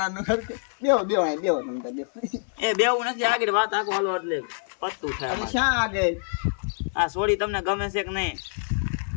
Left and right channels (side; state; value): right; silent; 61 dB below the other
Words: બેહો બેહો અહીં બેહો તમે તો બેહો એ બેવું નથી આગળ વાત આખો હાલો એટલે પત્તું થાય અરે અમારે. શા આગળ આ સોડી તમને ગમે છે કે નહીં?